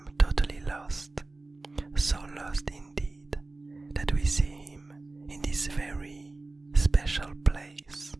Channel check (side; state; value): left; quieter; 3.2 dB